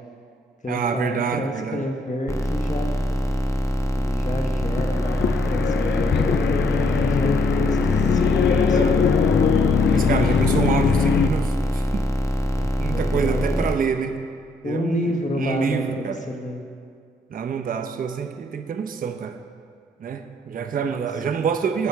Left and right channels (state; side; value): normal; both; correlation 0.70